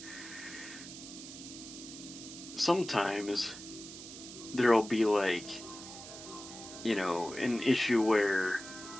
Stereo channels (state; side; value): noise; right; hiss, 13 dB below the sound